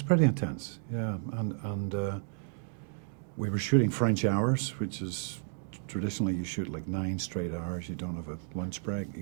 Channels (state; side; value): silent; left; digital silence